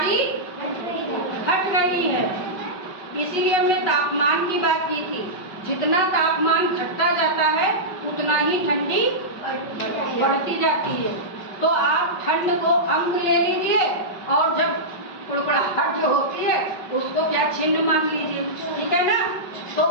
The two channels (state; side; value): late; right; 5.4 ms